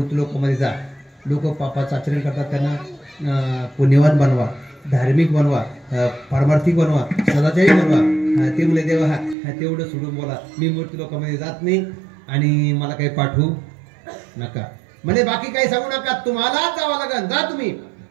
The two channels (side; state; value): left; drops out; at 9.3 s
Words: लोकांमध्ये जा, लोक पापाचं आचरण करतात, त्यांना पुण्यवान बनवा, धार्मिक बनवा, पारमार्थिक बनवा, सदाचारी बनवा. ते म्हणले देवा हा तेवढं सोडून बोला, मी मूर्ती लोकांमध्ये जात नाही आणि मला काही पाठवू नका. म्हणजे बाकी काही सांगू नका, तुम्हालाच जावं लागेल, जा तुम्ही.